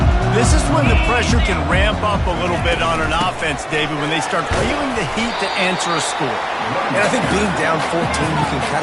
This is when the pressure can ramp up a little bit on an offense, David, when they start feeling the heat to answer a score. And I think being down 14, you can kind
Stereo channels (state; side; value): identical; both; correlation 1.00